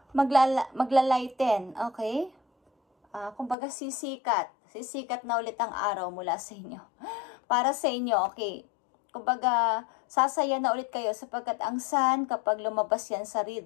magla-lighten. Okay? Kumbaga, sisikat. Sisikat na ulit ang araw mula sa inyo. Para sa inyo, okay? Kumbaga, sasaya na ulit kayo sapagkat ang sun, kapag lumabas yan sa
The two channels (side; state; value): right; drops out; at 3.6 s